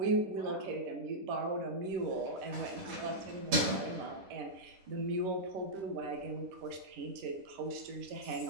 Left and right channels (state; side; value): late; left; 10 ms